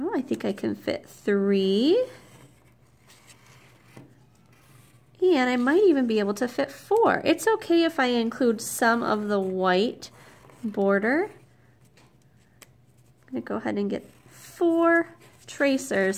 I think I can fit three. And I might even be able to fit four. It's okay if I include some of the white border. I'm going to go ahead and get 4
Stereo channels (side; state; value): both; identical; correlation 1.00